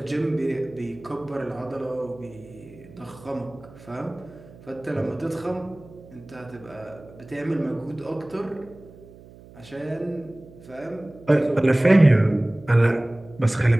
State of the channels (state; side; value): noise; right; hum, 21 dB below the sound